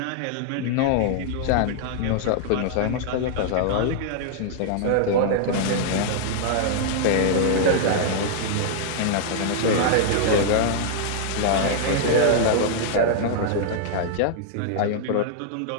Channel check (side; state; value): both; different; correlation -0.01